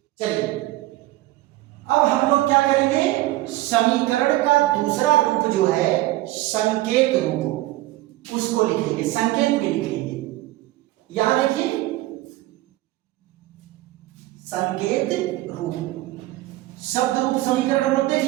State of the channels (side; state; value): left; quieter; 17.5 dB